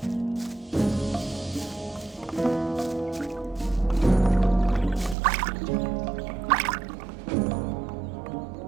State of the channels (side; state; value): left; drops out; at 5.2 s